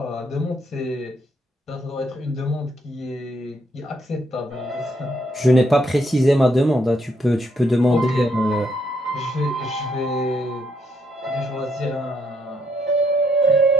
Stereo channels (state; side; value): normal; both; correlation 0.74